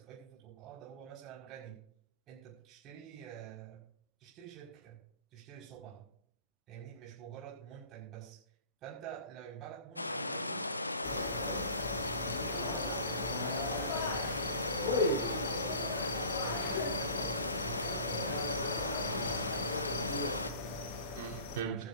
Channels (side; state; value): both; inverted; correlation -0.45